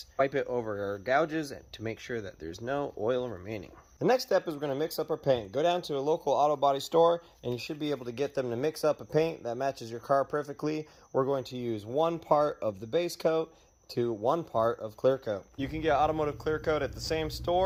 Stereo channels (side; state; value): both; identical; correlation 1.00